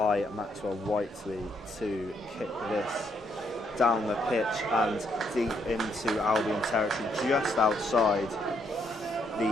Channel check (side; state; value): both; normal; correlation 0.74